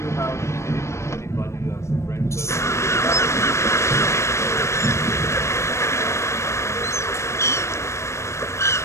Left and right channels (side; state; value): right; late; 0.13 ms